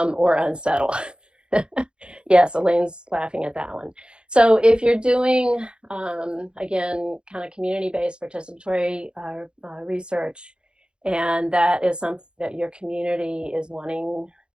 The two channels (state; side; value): late; left; 0.052 ms